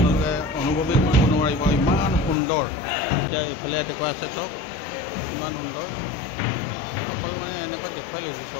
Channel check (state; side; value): drops out; right; at 2.4 s